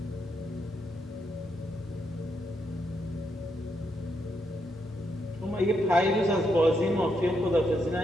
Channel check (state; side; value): normal; both; correlation 0.80